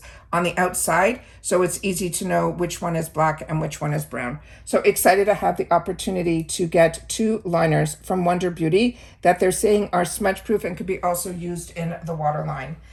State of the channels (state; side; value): identical; both; correlation 1.00